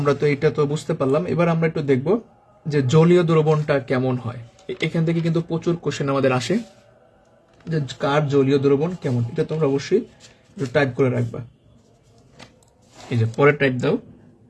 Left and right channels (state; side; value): identical; both; correlation 1.00